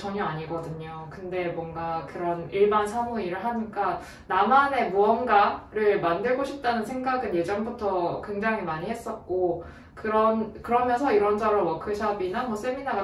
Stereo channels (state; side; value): identical; both; correlation 1.00